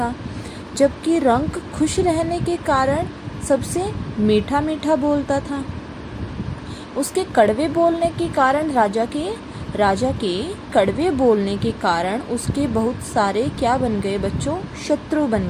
जबकि रंक खुश रहने के कारण सबसे मीठा मीठा बोलता था। उसके कड़वे बोलने के कारण राजा के कड़वे बोलने के कारण उसके बहुत सारे क्या बन गए बच्चों? शत्रु बन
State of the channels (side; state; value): both; identical; correlation 1.00